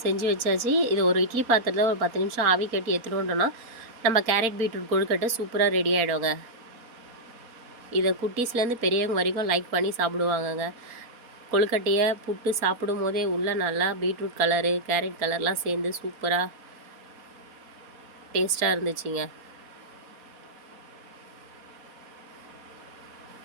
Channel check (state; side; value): late; left; 4.2 ms